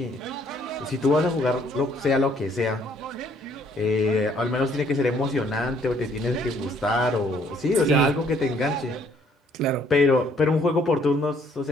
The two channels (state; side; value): normal; both; correlation 0.64